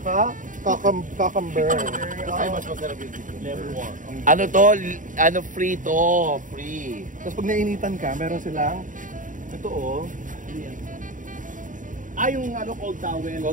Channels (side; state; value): left; late; 0.38 ms